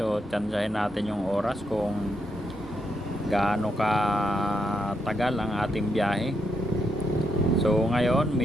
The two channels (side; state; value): both; normal; correlation 0.80